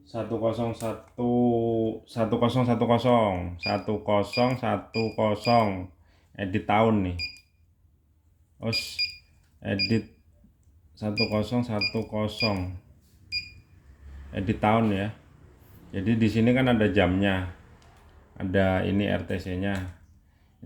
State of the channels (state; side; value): identical; both; correlation 1.00